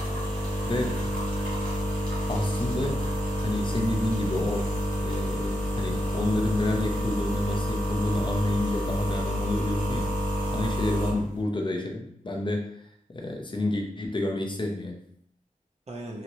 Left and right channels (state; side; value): normal; both; correlation 0.86